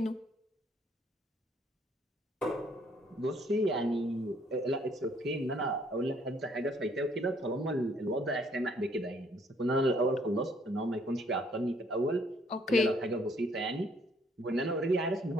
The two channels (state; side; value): normal; both; correlation 0.64